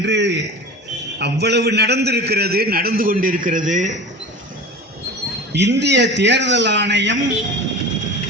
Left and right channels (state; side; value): normal; both; correlation 0.34